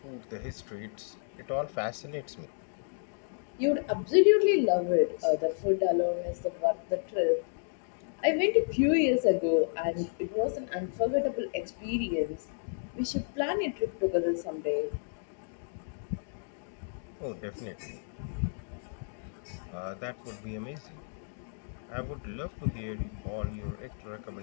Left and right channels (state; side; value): silent; right; digital silence